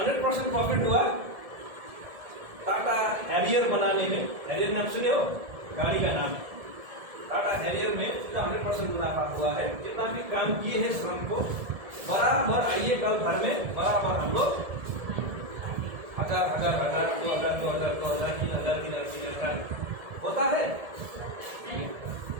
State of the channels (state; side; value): late; left; 1.7 ms